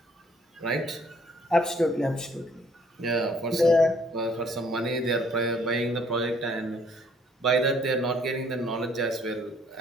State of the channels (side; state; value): both; normal; correlation 0.62